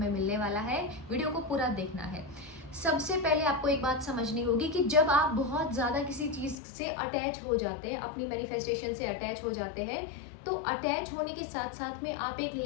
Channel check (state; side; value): drops out; right; at 6.6 s